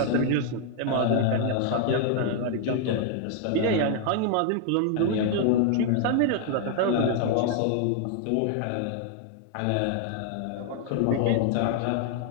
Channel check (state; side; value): different; both; correlation 0.00